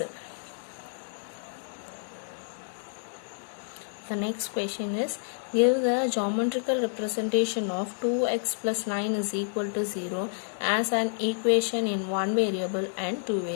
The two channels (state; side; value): silent; right; digital silence